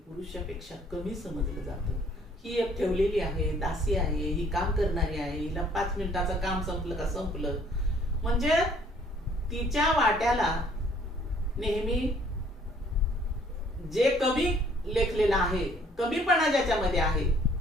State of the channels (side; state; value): both; normal; correlation 0.60